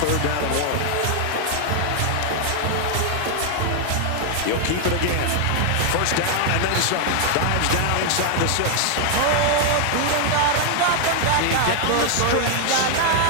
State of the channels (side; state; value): both; different; correlation 0.00